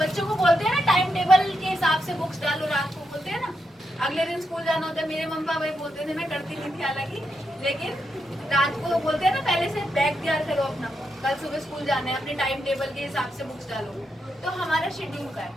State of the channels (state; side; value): normal; both; correlation 0.83